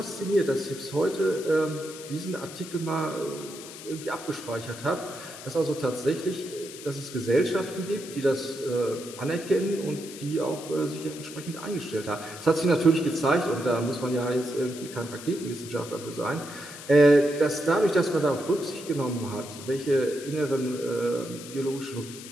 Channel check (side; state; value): left; noise; hiss, 14 dB below the sound